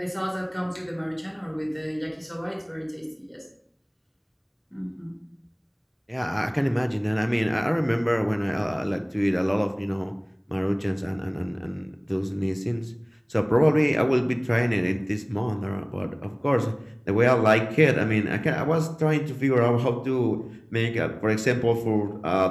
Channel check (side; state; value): both; identical; correlation 1.00